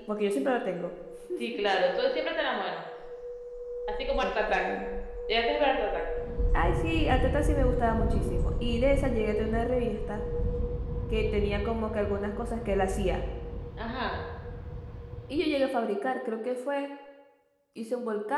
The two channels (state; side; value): identical; both; correlation 1.00